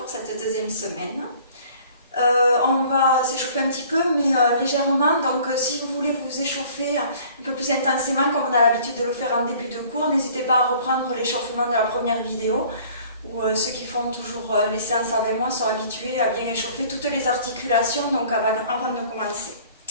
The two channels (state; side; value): inverted; both; correlation -0.52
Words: cette deuxième semaine. On va s'échauffer un petit peu, mais légèrement. Donc si vous voulez vous échauffer un peu plus intensément, comme on a l'habitude de le faire en début de cours, n'hésitez pas à reprendre l'échauffement de la première vidéo, où ceux qui font toujours les séances avec moi sont habitués à bien échauffer toutes les articulations donc avant de commencer.